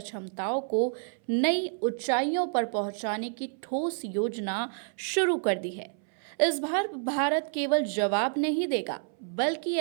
को नई ऊंचाइयों पर पहुंचाने की ठोस योजना शुरू कर दी है। इस बार भारत केवल जवाब नहीं देगा, बल्कि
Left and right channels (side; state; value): left; silent; 59 dB below the other